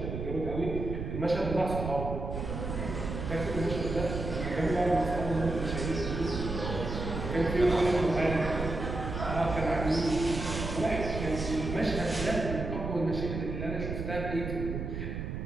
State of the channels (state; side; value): noise; right; rumble, 5 dB below the sound